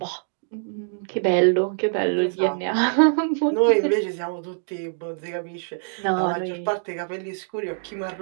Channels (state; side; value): silent; left; digital silence